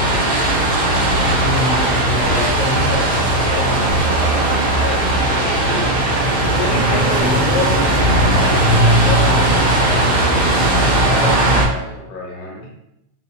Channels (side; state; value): right; late; 15 ms